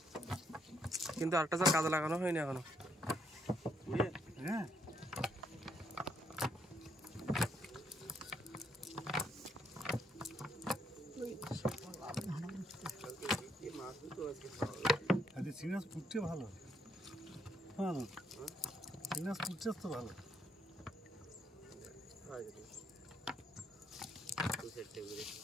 কিন্তু আরেকটা জাল কাজে লাগানো হয়নি এখনো হ্যাঁ সিগনাস ফুটছে ভালো হ্যাঁ সিগনাস ফুটছে তো ভালো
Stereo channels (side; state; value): both; normal; correlation 0.73